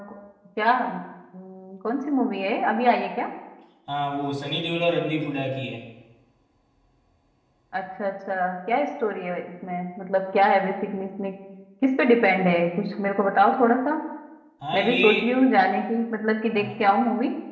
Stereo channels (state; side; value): identical; both; correlation 1.00